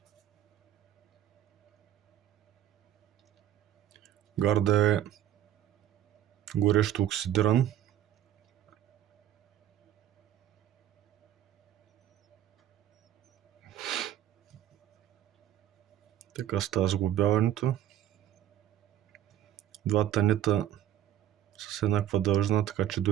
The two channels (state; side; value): quieter; left; 11.8 dB